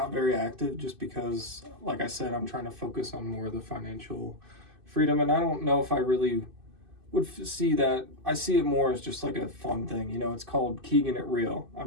very active just because, like I said, I'm trying to focus on more of the financial freedom, and I don't know if I really would see that. I see it more as just like a fun thing. It's called Keegan It Real.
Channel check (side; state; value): left; late; 2.6 ms